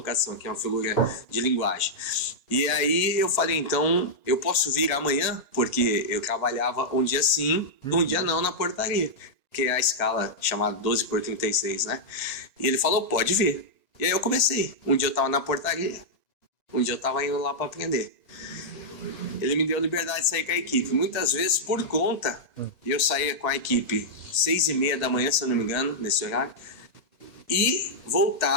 aqui, uma figura de linguagem. E aí eu falei, então, eu posso vir amanhã? Porque eu trabalhava um dia sim, um dia não na portaria, que é a escala chamada 12/36, né? E ele falou, pode vir. E aí eu comecei. Um dia eu tava na portaria, um dia eu tava indo lá para aprender. Ele me deu liberdade de sair com a equipe. Muitas vezes, por conta, eu saía com a equipe 6:30 da manhã, se eu não me engano, nesse horário, e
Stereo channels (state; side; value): late; right; 1.9 ms